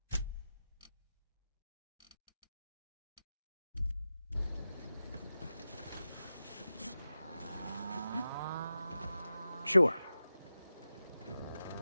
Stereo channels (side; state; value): both; inverted; correlation -0.93